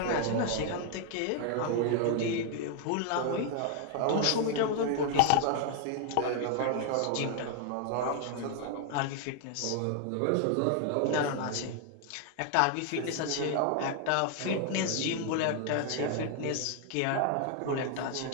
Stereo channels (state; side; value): different; both; correlation 0.00